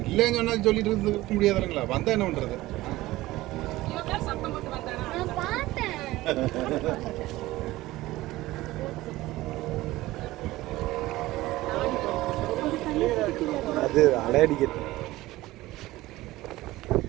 இல்லைன்னு சொன்னா சொல்லிட்டு இருக்க முடியாது இல்லைங்களா? வந்தா என்ன பண்றது? நான் பார்த்தேன். அது அலையடிக்கிறது.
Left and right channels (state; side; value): quieter; left; 17.7 dB